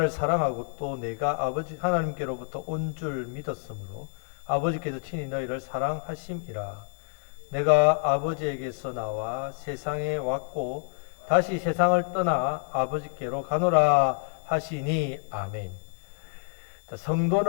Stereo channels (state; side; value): silent; right; digital silence